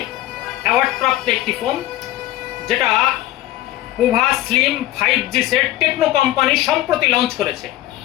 অ্যাওয়ার্ডপ্রাপ্ত একটি ফোন, যেটা Pova slim 5G set Tecno company সম্প্রতি লঞ্চ করেছে।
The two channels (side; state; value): right; quieter; 15.4 dB